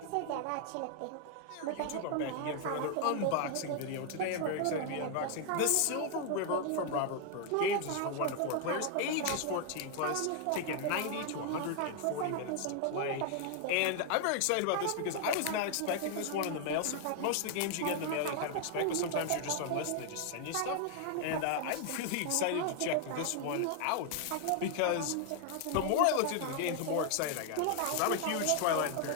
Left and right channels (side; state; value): both; different; correlation 0.00